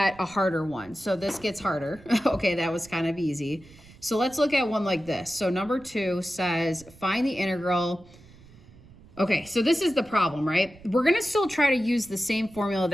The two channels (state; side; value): noise; right; rumble, 23 dB below the sound